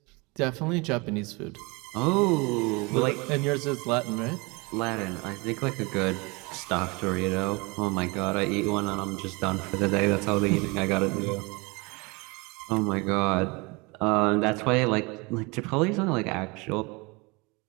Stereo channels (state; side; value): quieter; left; 27.1 dB